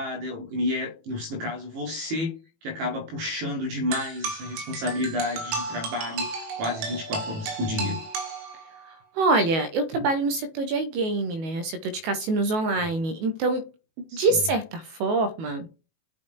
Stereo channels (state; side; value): late; left; 19 ms